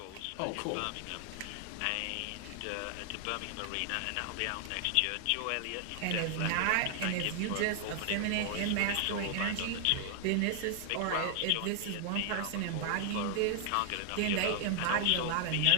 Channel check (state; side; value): different; both; correlation 0.00